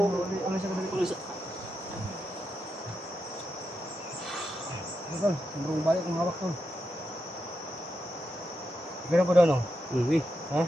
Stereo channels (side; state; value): both; normal; correlation 0.86